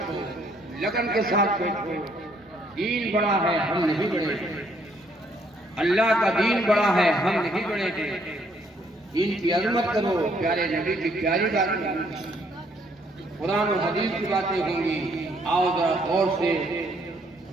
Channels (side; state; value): both; normal; correlation 0.68